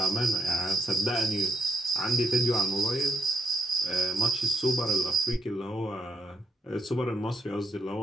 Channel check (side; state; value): both; normal; correlation 0.76